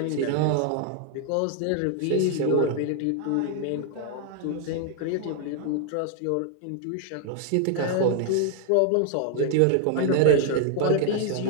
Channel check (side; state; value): both; different; correlation 0.00